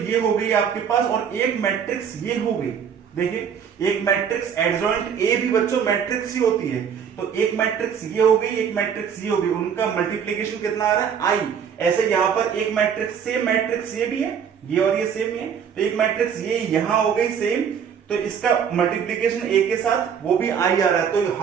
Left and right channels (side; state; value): left; quieter; 7.5 dB